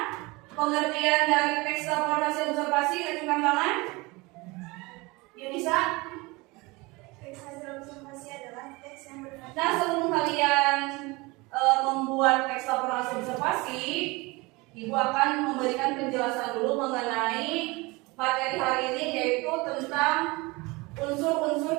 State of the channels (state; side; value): quieter; left; 24.2 dB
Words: pengertian dari teks laporan hasil observasi? Acungkan tangan. Yunisa? Teks hasil observasi adalah teks yang berkaitan. Nah, sebelum kalian membuat teks laporan hasil observasi, Ibu akan memberikan penjelasan dulu mengenai materi hari ini, yaitu tentang unsur-unsur